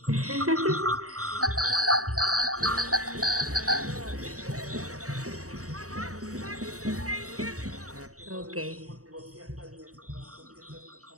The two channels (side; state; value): left; late; 0.65 ms